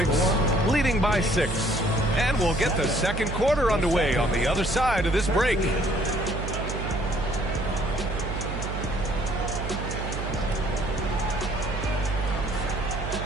leading by 6. And we'll get the second quarter underway on the other side of this break.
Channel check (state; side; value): noise; right; hum, 5 dB below the sound